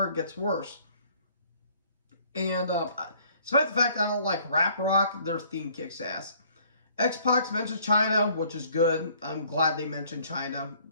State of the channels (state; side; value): inverted; both; correlation -0.59